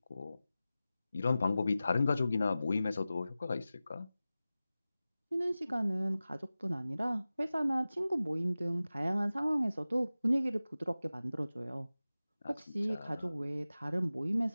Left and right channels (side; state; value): both; inverted; correlation -0.96